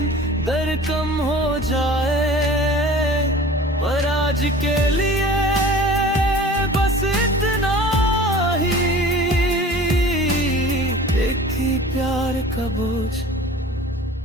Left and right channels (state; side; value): normal; both; correlation 0.43